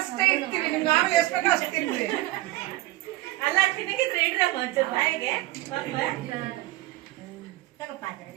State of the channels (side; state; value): left; quieter; 17.8 dB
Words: ಇಡ್ತೀವಿ, ನಿಮ್ಗೆ ನಾವು ಎಷ್ಟು ಬೇಕೋ ಅಷ್ಟು ತಿನ್ರಿ. ಅಲ್ಲ ತಿನ್ನಗಿದ್ರೆ ಇಡ್ರ ಮಂಚೂರು ಬಾಯಿಗೆ